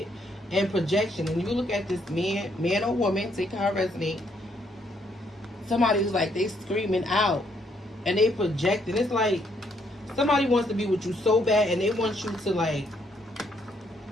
and projection. And you look at this man or woman, take how it resonates. Somebody's like, they screaming out. And they projecting. It's like somebody wants to be with you so bad and they want you to, like,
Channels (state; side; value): normal; both; correlation 0.72